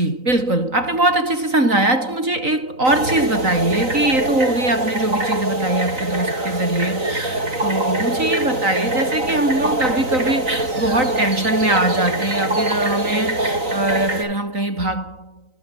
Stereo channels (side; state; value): left; late; 3.9 ms